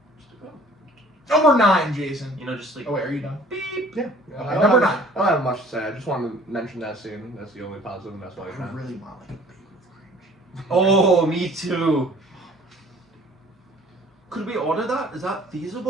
Just bleep it out. Number 9, Jason. You know, just like Oh wait, are you done? beep. Yeah. Okay, I don't number have- 9. I don't have much to say. I just wanted to mention that scene. That's the only positive, and that's why I I found. really want like a big cringe. Oh, me too. Could we order that? Is that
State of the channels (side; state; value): both; normal; correlation 0.52